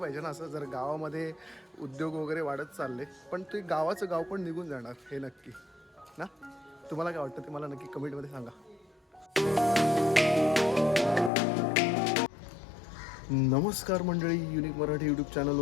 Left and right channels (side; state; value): right; drops out; at 11.3 s